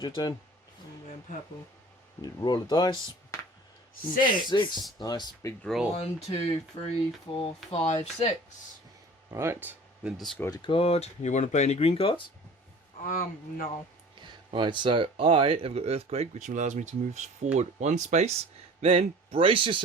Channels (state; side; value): normal; both; correlation 0.44